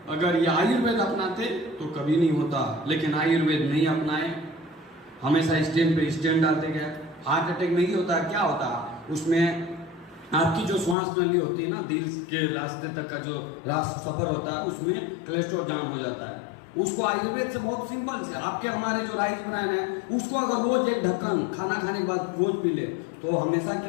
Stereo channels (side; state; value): right; drops out; at 11.0 s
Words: अगर ये आयुर्वेद अपनाते तो कभी नहीं होता, लेकिन आयुर्वेद नहीं अपनाए, हमेशा स्टैंड पे स्टैंड डालते गए। हार्ट अटैक नहीं होता, क्या होता उसमें आपकी जो श्वास नली होती है ना, दिल के रास्ते तक का जो सफर होता है उसमें कोलेस्ट्रॉल जाम हो जाता है। उसको आयुर्वेद से बहुत सिंपल से, आपके हमारे जो राइस बनाए हैं उसको अगर रोज एक ढक्कन खाना खाने के बाद रोज पी ले तो हमेशा के